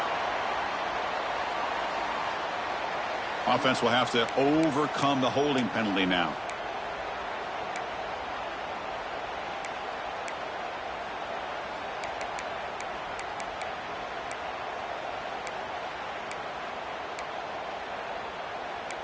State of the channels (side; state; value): both; identical; correlation 1.00